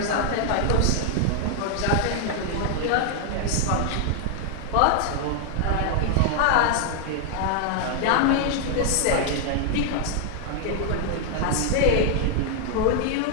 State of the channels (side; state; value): both; different; correlation 0.00